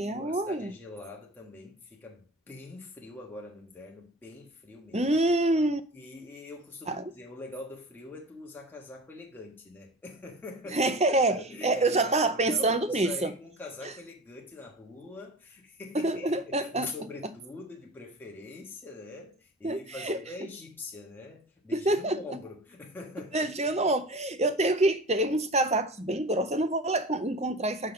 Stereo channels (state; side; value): normal; both; correlation 0.35